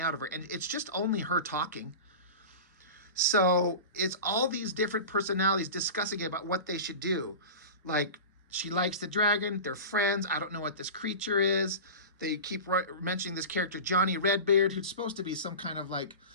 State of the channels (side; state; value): both; inverted; correlation -0.31